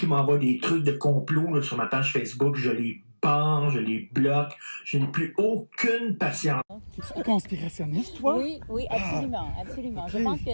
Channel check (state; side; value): inverted; both; correlation -1.00